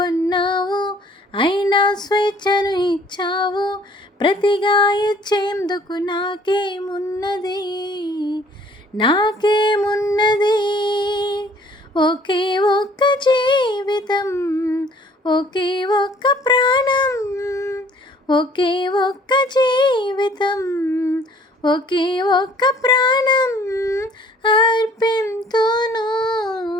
అయినా స్వేచ్ఛను ఇచ్చావు, ప్రతిగా ఇచ్చేందుకు నాకేమున్నది నాకేమున్నది. ఒకే ఒక్క జీవితం, ఒకే ఒక్క ప్రాణం, ఒకే ఒక్క జీవితం, ఒకే ఒక్క ప్రాణం అర్పింతును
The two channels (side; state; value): both; normal; correlation 0.57